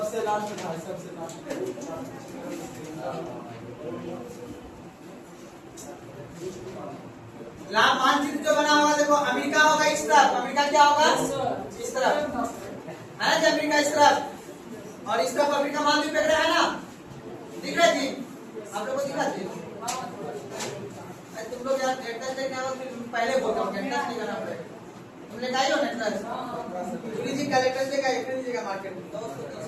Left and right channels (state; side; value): identical; both; correlation 1.00